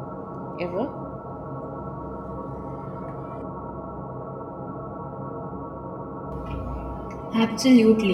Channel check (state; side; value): identical; both; correlation 1.00